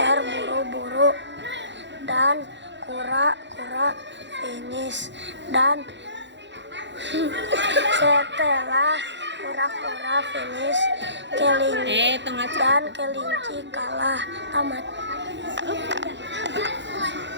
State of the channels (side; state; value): left; late; 0.52 ms